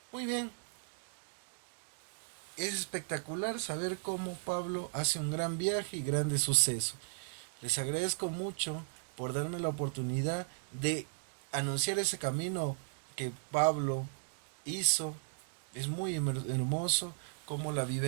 Muy bien, es espectacular saber cómo Pablo hace un gran viaje y grandes sucesos. Les agradezco mucho por darme la oportunidad de anunciar ese camino que Pablo hizo. Es muy hermoso cómo la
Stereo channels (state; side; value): silent; left; digital silence